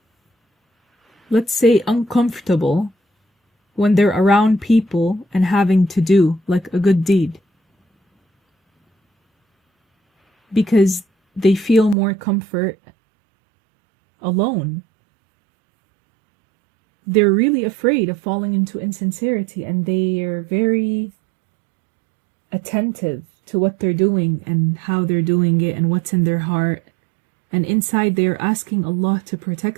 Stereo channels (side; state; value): left; drops out; at 12.0 s